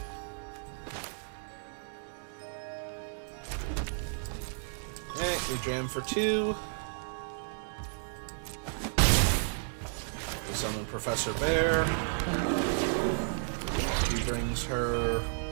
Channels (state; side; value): silent; left; 56 dB below the other